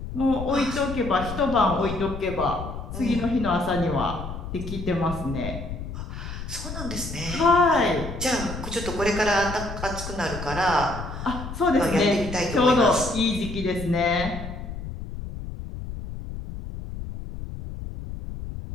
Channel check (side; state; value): left; noise; rumble, 8 dB below the sound